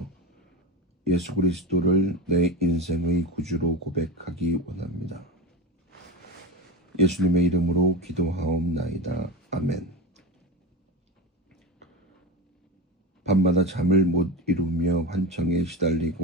예수 그리스도를 내 인생의 구주로 고백하기 원합니다. 예수님의 이름으로 기도하옵나이다. 아멘. 밤마다 잠을 못 이루며 환청에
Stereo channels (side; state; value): both; normal; correlation 0.24